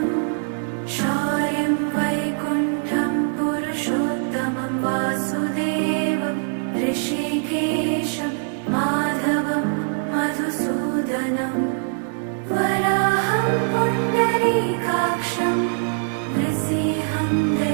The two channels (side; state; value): left; silent; 62 dB below the other